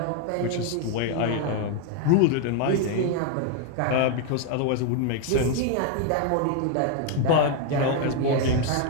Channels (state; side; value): different; both; correlation 0.01